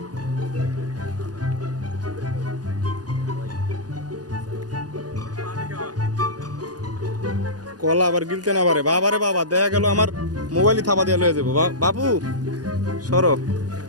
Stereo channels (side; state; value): left; late; 0.69 ms